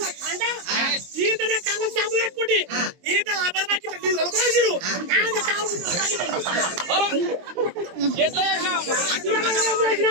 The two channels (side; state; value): left; late; 23 ms